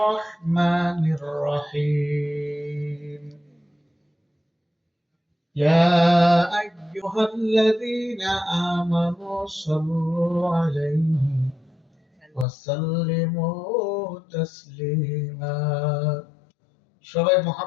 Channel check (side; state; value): right; drops out; at 12.5 s